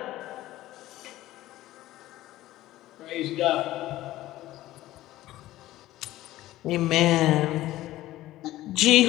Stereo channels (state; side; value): quieter; right; 15.6 dB